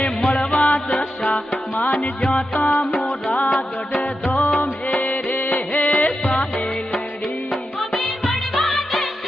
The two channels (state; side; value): normal; both; correlation 0.89